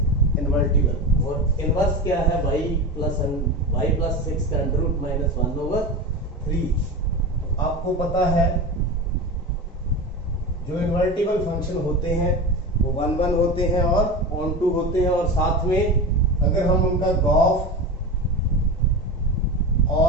invertible और इनवर्स क्या है y प्लस 6 का अंडर रूट -1/3। आपको पता है जो इन्वर्टिबल फंक्शन होते हैं वो 1 1 होते हैं और ऑन टू होते हैं, और साथ में अगर हम उनका गॉफ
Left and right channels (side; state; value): both; normal; correlation 0.25